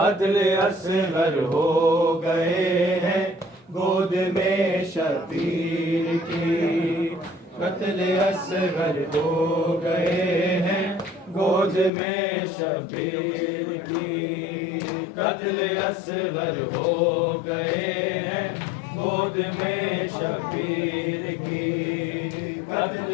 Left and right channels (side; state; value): right; drops out; at 11.9 s